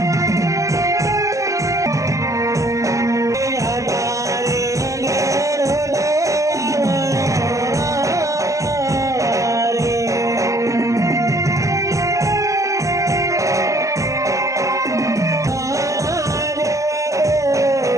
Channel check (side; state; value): left; late; 0.16 ms